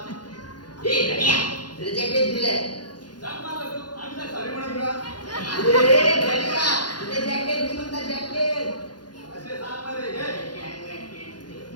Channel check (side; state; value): right; late; 0.70 ms